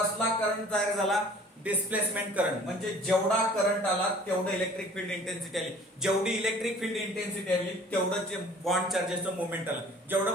करंट तयार झाला? Displacement current. म्हणजे जेवढा करंट आला तेवढं इलेक्ट्रिक फील्ड इंटेन्सिटी आली. जेवढी इलेक्ट्रिक फील्ड इंटेन्सिटी आली तेवढं जे बॉन्ड चार्जेसचं मुवमेंट आलं.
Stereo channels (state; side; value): normal; both; correlation 0.50